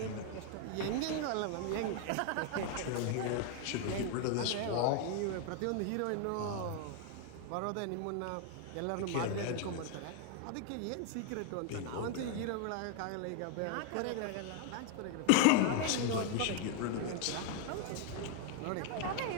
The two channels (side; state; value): both; different; correlation 0.00